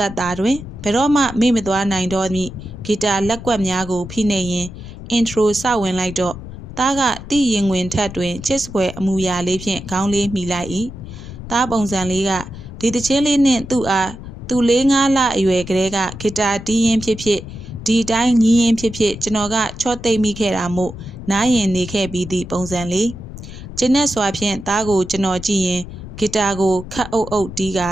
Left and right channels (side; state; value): left; noise; rumble, 13 dB below the sound